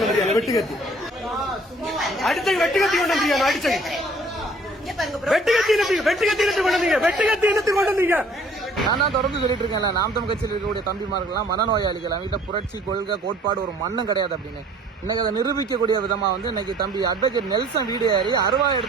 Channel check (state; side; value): normal; both; correlation 0.55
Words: வந்தியா? வெட்டுக்கத்தி அடிச்ச வெட்டுக்கத்தி கொண்டு வந்தியா? அடிச்ச நான் தான் தொடர்ந்து சொல்லிட்டு இருக்கேன்ல, நாம் தமிழ் கட்சியில் இருக்கக்கூடிய தம்பிமார்கள்லாம் மனநோயாளிகள், அவங்ககிட்ட புரட்சி கொள்கை கோட்பாடு ஒரு மண்ணும் கிடையாது அப்படின்னு இன்னைக்கு அதை நிரூபிக்கக்கூடிய விதமா இன்னைக்கு தம்பி அட்வொகேட் நெல்சன் வீடு ஏறி அருவா